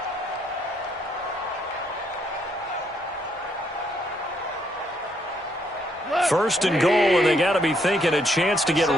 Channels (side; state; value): both; normal; correlation 0.72